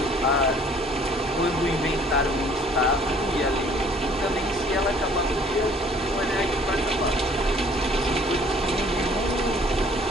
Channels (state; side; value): normal; both; correlation 0.56